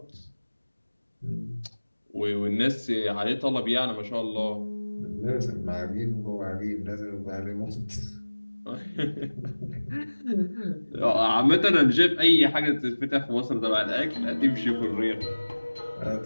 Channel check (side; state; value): both; inverted; correlation -1.00